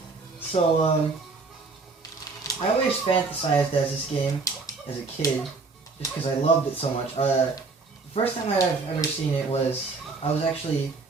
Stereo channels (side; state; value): left; quieter; 4.2 dB